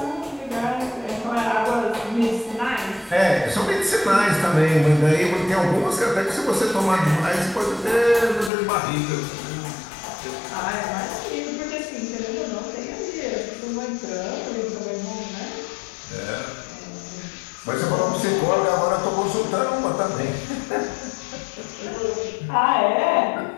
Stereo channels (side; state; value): right; drops out; at 8.5 s